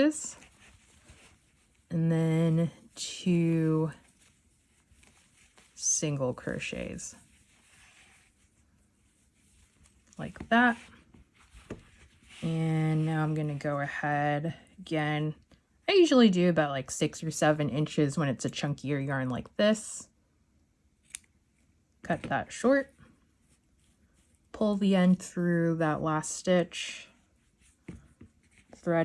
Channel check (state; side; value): identical; both; correlation 1.00